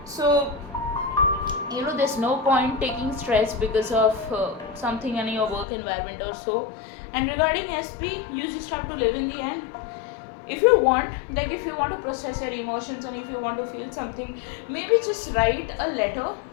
So there's no point taking stress because of something in your work environment or so. And regarding SP, you just have to live in the end. If you want to process your emotions, and if you want to feel something, maybe just write a letter,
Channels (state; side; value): drops out; right; at 5.7 s